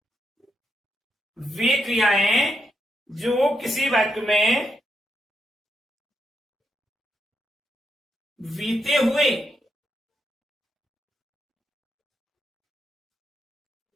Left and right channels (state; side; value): normal; both; correlation 0.81